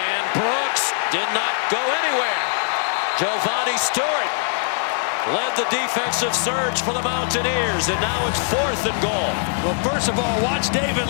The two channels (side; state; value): right; silent; 64 dB below the other